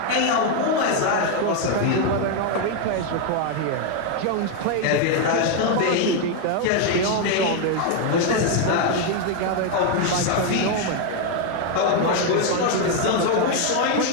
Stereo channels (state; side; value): different; both; correlation 0.01